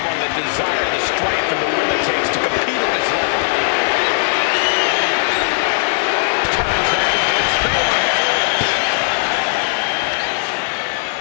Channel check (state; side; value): silent; right; 68 dB below the other